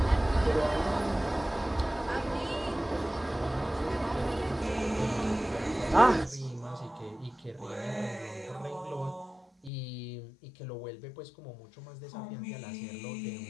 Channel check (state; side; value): drops out; right; at 9.7 s